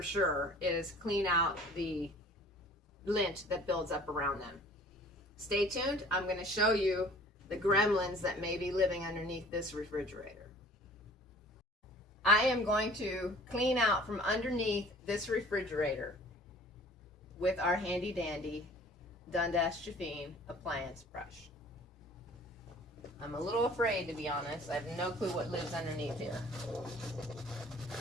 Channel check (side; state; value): both; normal; correlation 0.49